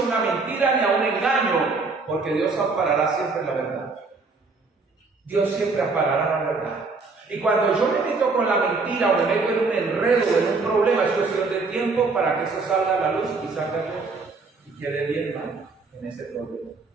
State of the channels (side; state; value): left; quieter; 4.1 dB